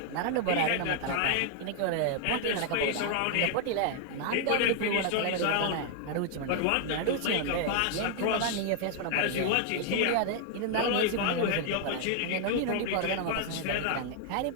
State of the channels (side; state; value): both; different; correlation 0.00